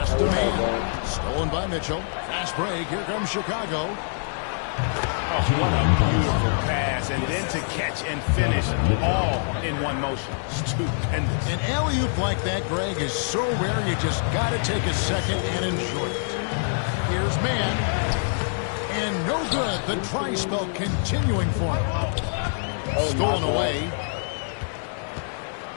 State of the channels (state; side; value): silent; right; 62 dB below the other